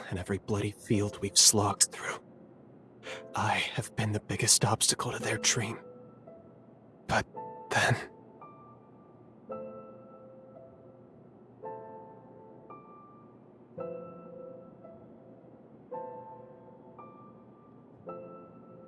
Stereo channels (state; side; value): identical; both; correlation 1.00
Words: and every bloody field we've slogged through, I have been the biggest obstacle to their dream. But then...